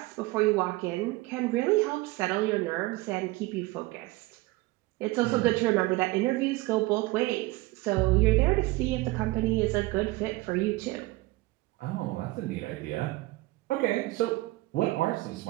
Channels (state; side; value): quieter; left; 20.5 dB